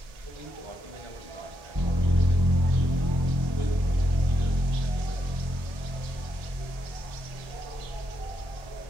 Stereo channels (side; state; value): left; late; 1.7 ms